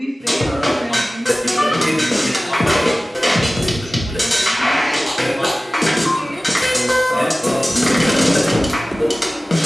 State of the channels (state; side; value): normal; both; correlation 0.97